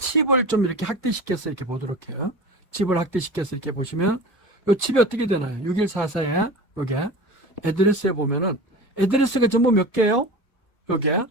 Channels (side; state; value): both; normal; correlation 0.33